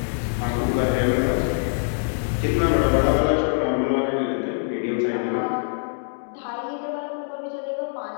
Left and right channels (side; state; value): right; silent; digital silence